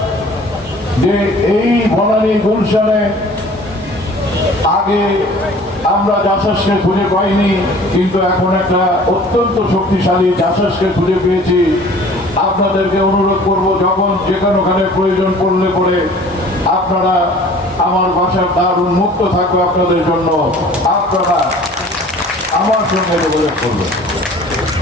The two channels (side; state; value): both; normal; correlation 0.48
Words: যে এই বনানী গুলশানে আগে আমরা জাসাসকে খুঁজে পাইনি, কিন্তু এখন একটা অত্যন্ত শক্তিশালী জাসাসকে খুঁজে পেয়েছি। আপনাদেরকে অনুরোধ করব, যখন যেখানে প্রয়োজন পড়লে পরে আপনারা, আমার বাসার দ্বার উন্মুক্ত থাকবে আপনাদের জন্য, আপনারা আমার সঙ্গে যোগাযোগ করবেন।